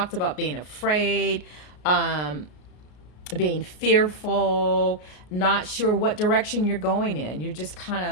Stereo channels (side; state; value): right; late; 33 ms